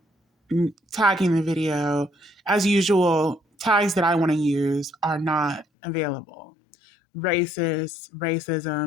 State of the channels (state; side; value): drops out; right; at 5.7 s